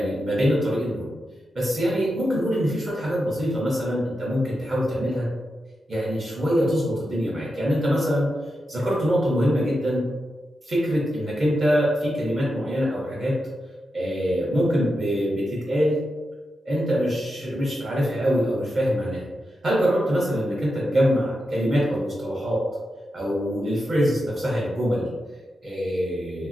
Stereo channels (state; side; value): normal; both; correlation 0.88